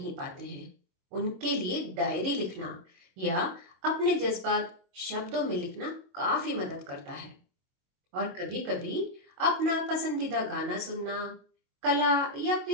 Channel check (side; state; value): left; late; 22 ms